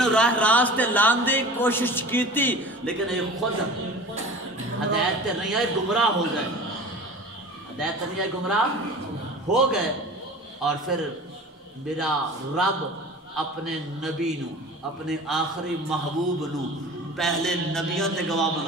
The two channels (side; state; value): both; normal; correlation 0.39